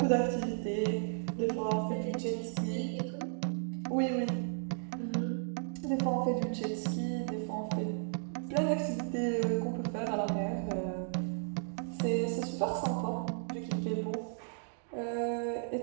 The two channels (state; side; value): silent; left; digital silence